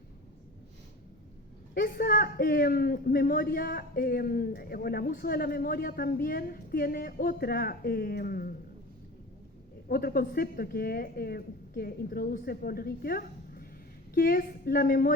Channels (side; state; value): both; normal; correlation 0.34